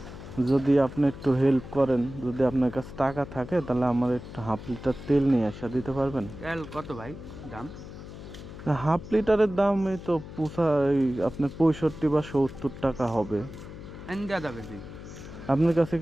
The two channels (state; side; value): noise; left; hum, 13 dB below the sound